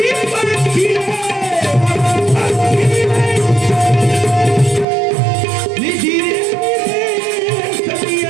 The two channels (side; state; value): left; drops out; at 4.9 s